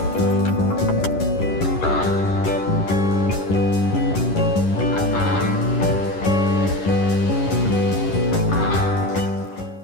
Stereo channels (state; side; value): late; right; 11 ms